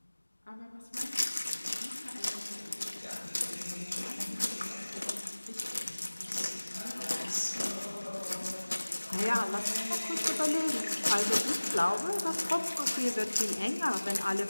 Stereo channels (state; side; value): inverted; both; correlation -1.00